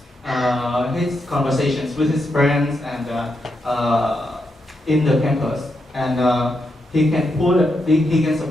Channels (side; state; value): both; normal; correlation 0.83